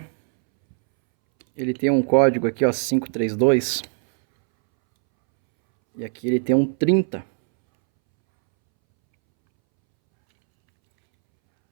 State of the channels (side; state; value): left; silent; 65 dB below the other